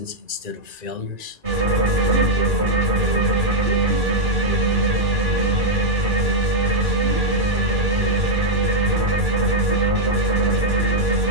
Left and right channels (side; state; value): left; late; 2.4 ms